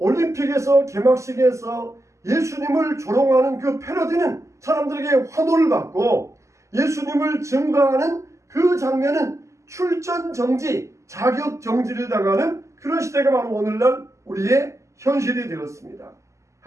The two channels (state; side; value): late; left; 0.14 ms